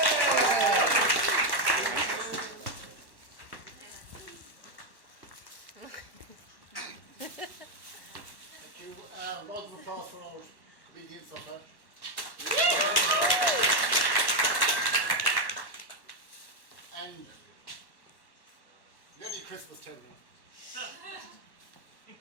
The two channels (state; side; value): late; left; 1.1 ms